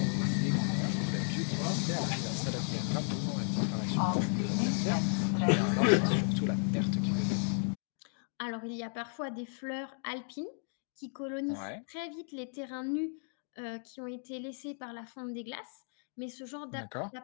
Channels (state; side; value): silent; right; 55 dB below the other